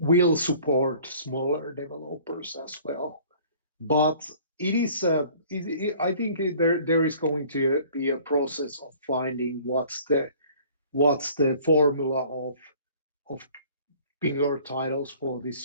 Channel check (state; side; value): inverted; both; correlation -0.51